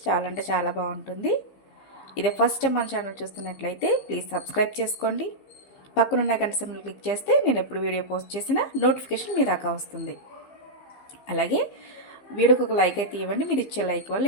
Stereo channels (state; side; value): late; right; 15 ms